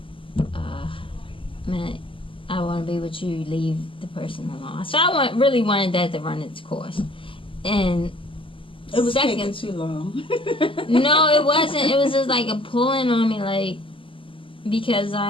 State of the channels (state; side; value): late; right; 0.25 ms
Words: man, I want to be with you, leave the person alone. So I really wanted that to run its course. And it was taking too long. No, it wasn't. It was just like a pulling on me, because